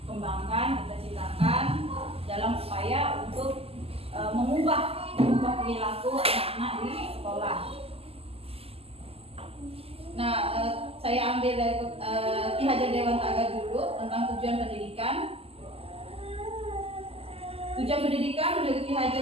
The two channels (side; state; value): left; late; 0.29 ms